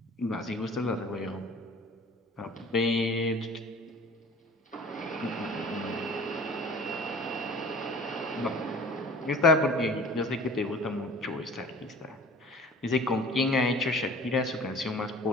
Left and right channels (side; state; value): both; normal; correlation 0.45